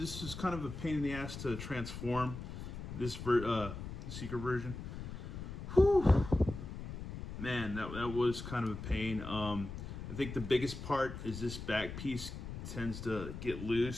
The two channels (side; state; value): left; noise; rumble, 8 dB below the sound